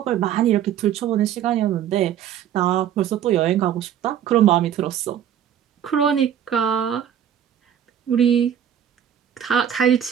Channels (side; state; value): left; quieter; 9.7 dB